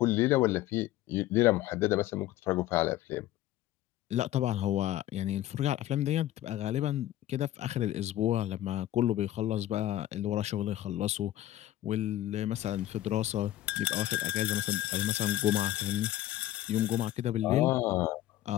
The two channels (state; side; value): quieter; right; 14.1 dB